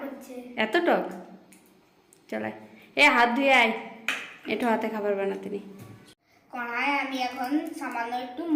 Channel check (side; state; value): both; identical; correlation 1.00